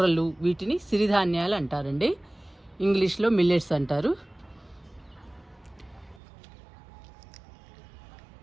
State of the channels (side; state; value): left; drops out; at 6.2 s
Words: వీటిని సిరిధాన్యాలు అంటారండి. ఇంగ్లీష్లో మిల్లెట్స్ అంటారు.